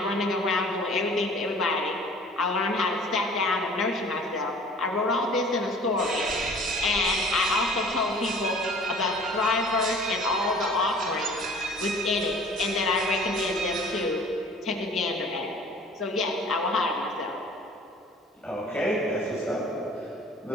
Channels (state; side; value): normal; both; correlation 0.49